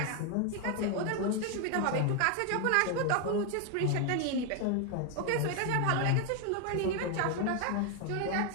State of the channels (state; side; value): different; both; correlation 0.01